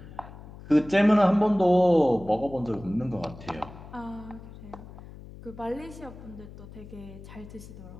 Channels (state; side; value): noise; left; hum, 16 dB below the sound